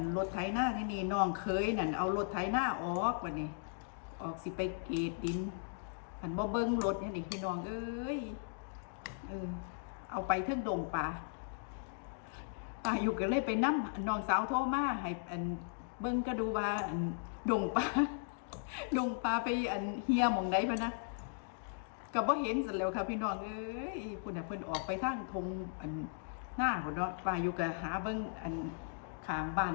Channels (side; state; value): right; silent; digital silence